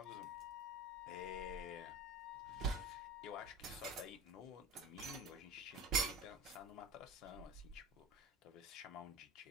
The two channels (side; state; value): both; normal; correlation 0.31